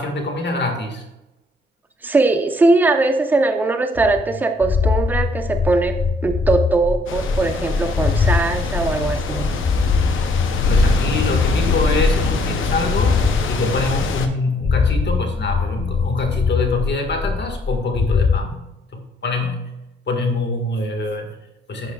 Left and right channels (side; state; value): both; normal; correlation 0.66